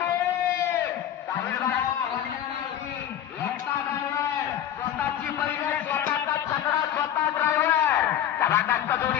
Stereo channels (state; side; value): quieter; right; 10.6 dB